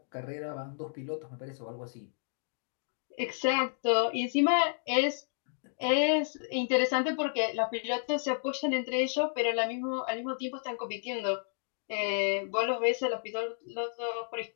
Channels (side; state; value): right; silent; digital silence